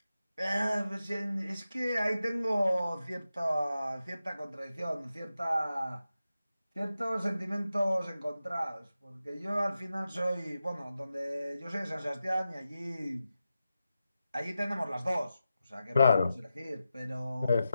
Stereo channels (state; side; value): inverted; both; correlation -0.91